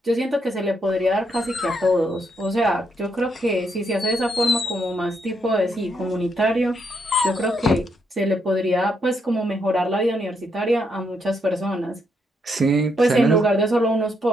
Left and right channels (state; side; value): normal; both; correlation 0.77